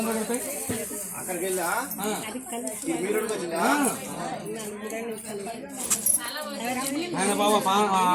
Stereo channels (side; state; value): both; identical; correlation 1.00